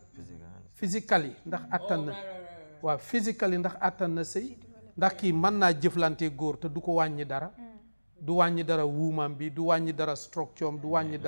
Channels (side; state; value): both; inverted; correlation -1.00